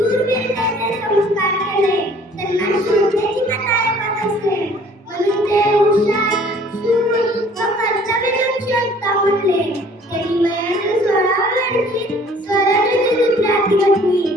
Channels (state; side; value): normal; both; correlation 0.54